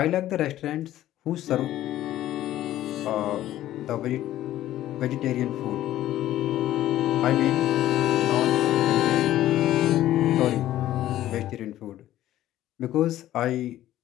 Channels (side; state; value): right; quieter; 13.6 dB